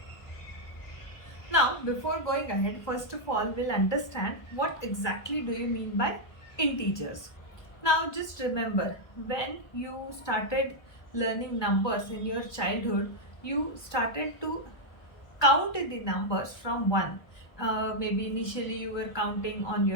Now, before going ahead, first of all, we'll understand what exactly do you mean by integers. Now, just remember, when you started learning numbers in your childhood, you started to count the numbers from 1. Maybe initially you were counting on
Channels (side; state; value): right; late; 1.2 ms